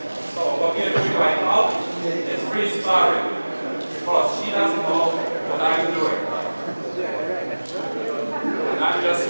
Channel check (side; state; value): both; inverted; correlation -1.00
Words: So what we are doing right now is free sparring, because she doesn't know what I'm doing. And I'm just